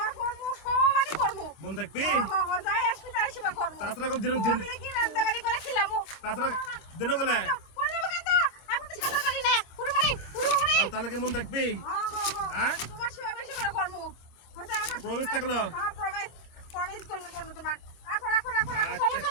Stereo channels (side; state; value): right; late; 25 ms